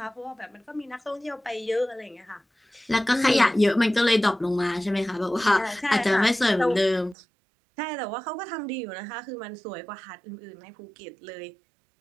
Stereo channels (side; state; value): left; drops out; at 7.2 s